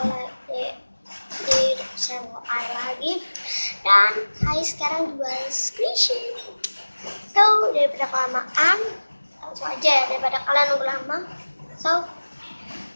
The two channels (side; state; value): both; inverted; correlation -1.00